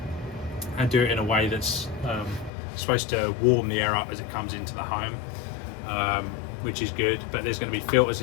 and do it in a way that's supposed to warm the air up as it comes into the home, which is good. But there's going to be filters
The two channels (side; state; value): right; drops out; at 2.5 s